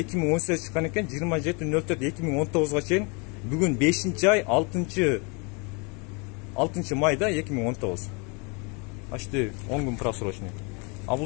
чыккан экен, 27.04.2019 чейин. Бүгүн 5-ай 6 майда 2019. Почти 10 күн просрочный. А бул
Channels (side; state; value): right; quieter; 32.1 dB